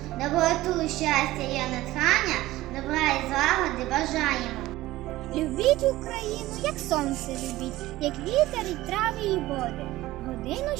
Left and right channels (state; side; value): quieter; left; 17.0 dB